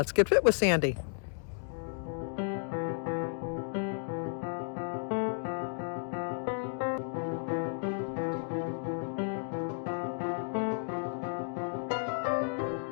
Get Fit with Sandy.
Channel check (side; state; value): right; silent; digital silence